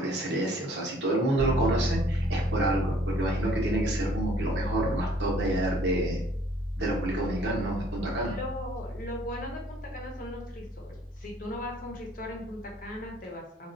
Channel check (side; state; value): both; normal; correlation 0.59